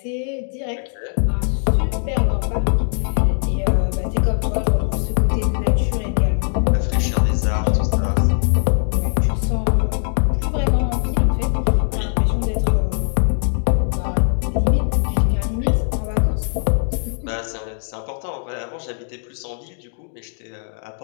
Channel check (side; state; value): right; silent; digital silence